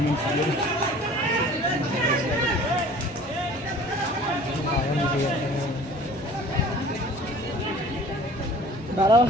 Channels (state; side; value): normal; both; correlation 0.47